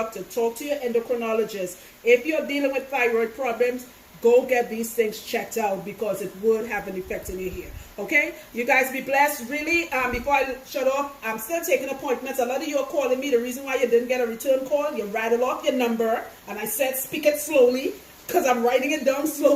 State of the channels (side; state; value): both; identical; correlation 1.00